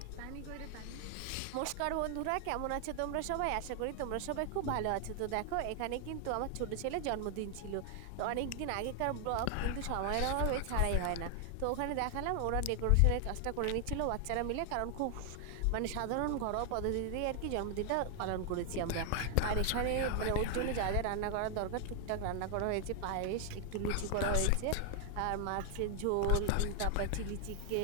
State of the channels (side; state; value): both; different; correlation 0.00